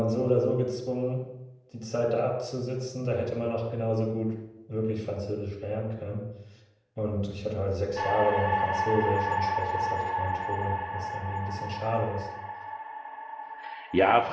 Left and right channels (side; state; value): both; identical; correlation 1.00